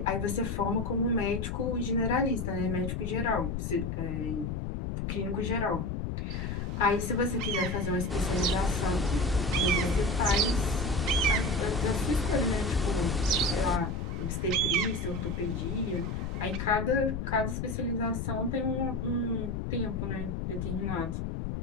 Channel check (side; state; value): left; noise; rumble, 3 dB below the sound